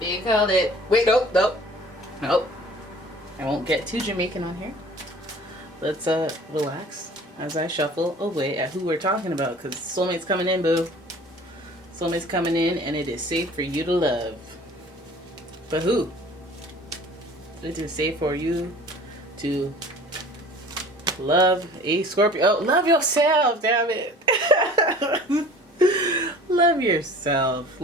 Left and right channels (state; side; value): normal; both; correlation 0.46